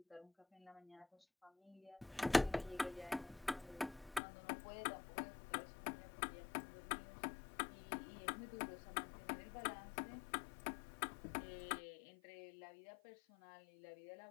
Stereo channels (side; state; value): right; drops out; at 4.2 s